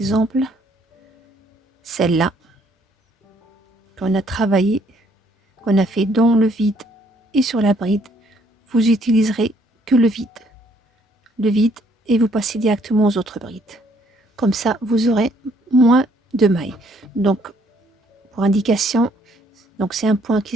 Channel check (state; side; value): normal; both; correlation 0.66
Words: celle-là, qu'on a travaillé, qu'on a fait dans le vide et sur la bride, vous utiliserez que le vide. Le vide et vous passez directement aux autres brides. Comme ça, vous aurez moins de mailles. Donc, pour indication, donc c'est un point